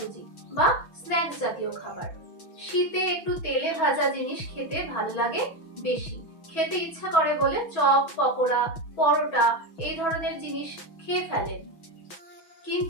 বা স্ন্যাক্স জাতীয় খাবার। শীতে একটু তেলে ভাজা জিনিস খেতে ভালো লাগে বেশি, খেতে ইচ্ছা করে বলে চপ, পকোড়া, পরোটা এই ধরনের জিনিস খেয়ে ফেলেন,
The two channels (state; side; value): late; right; 6.2 ms